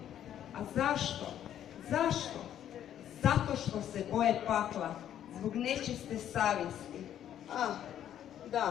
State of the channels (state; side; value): quieter; right; 10.6 dB